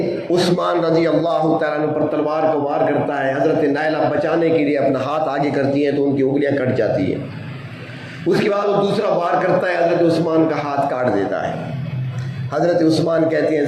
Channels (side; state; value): both; identical; correlation 1.00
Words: عثمان رضی اللہ تعالیٰ عنہ پر تلوار کو وار کرتا ہے۔ حضرت نائلہ بچانے کے لیے اپنا ہاتھ آگے کرتی ہیں تو ان کی انگلیاں کٹ جاتی ہیں۔ اس کے بعد وہ دوسرا وار کرتا ہے، حضرت عثمان کا ہاتھ کاٹ دیتا ہے۔ حضرت عثمان کہتے ہیں